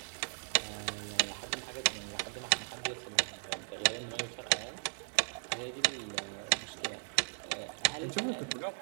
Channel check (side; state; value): left; silent; digital silence